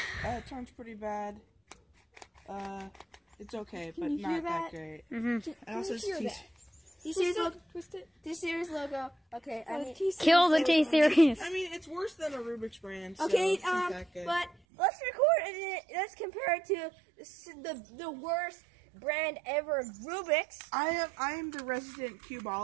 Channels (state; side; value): drops out; left; at 14.6 s